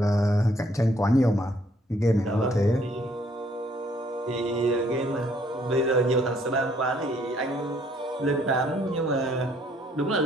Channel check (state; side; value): normal; both; correlation 0.65